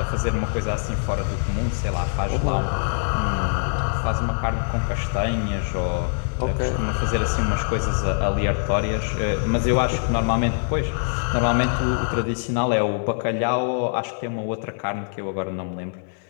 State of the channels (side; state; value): right; silent; 58 dB below the other